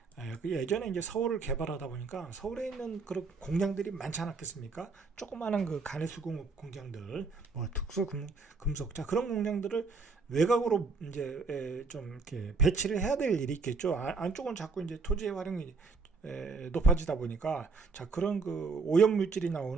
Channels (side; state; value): left; quieter; 4.4 dB